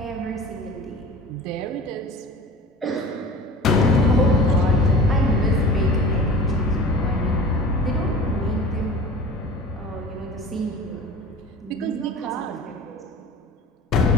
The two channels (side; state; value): both; normal; correlation 0.38